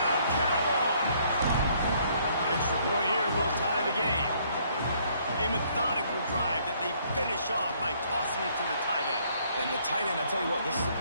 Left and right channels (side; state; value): both; inverted; correlation -0.65